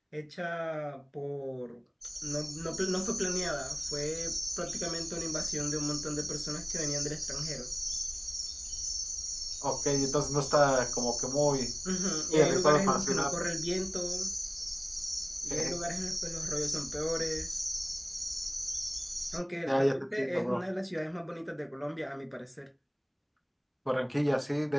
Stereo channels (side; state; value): both; identical; correlation 1.00